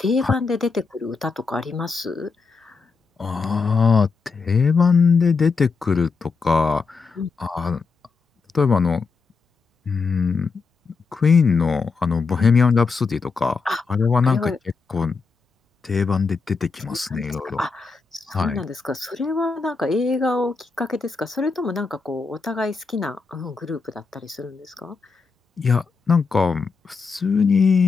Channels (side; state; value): right; quieter; 4.7 dB